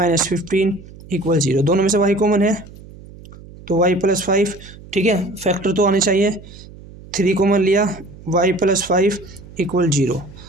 15 equal 0। दोनों में से y कॉमन है तो y + 5। ठीक है, फैक्टर तो आने चाहिए, 3 कॉमन लिया, y + 5 इक्वल 0,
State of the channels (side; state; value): right; noise; hum, 19 dB below the sound